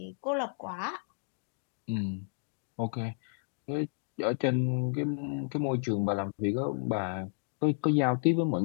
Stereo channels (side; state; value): right; silent; digital silence